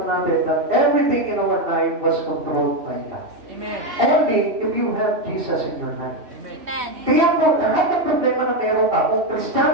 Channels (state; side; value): late; left; 3.1 ms